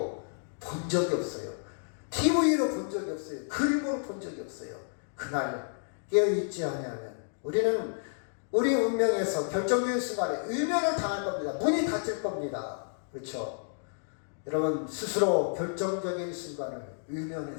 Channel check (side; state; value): right; silent; digital silence